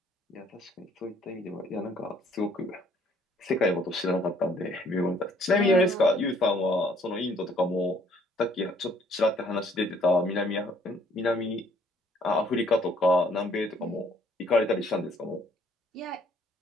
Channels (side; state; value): both; normal; correlation 0.62